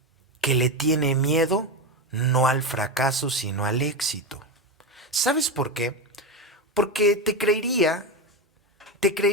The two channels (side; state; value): both; normal; correlation 0.15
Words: que le tiene miedo no al fracaso, sino al éxito. ¿Sabes por qué? Porque te creería